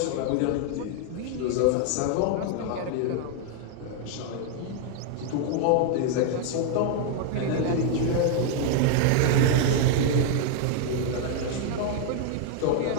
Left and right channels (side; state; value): both; different; correlation 0.00